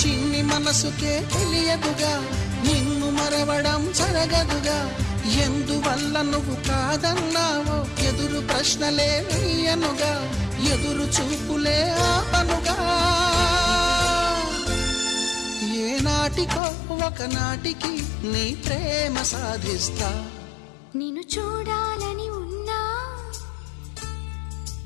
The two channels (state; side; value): drops out; right; at 16.6 s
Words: చిన్ని మనసుకే తెలియదుగా, నిన్ను మరవడం జరగదుగా. ఎందువల్ల నువ్వు కాదన్నావో ఎదురు ప్రశ్నలే వేయనుగా, ఎదురు చూపులే ఆపనుగా. ఏనాటికో ఒకనాటికి నీ ప్రేమ సాధిస్తా. నిన్ను చూడాలని ఉన్నా,